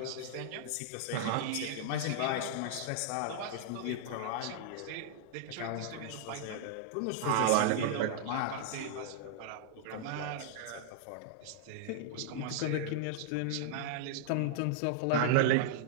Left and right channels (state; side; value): different; both; correlation -0.01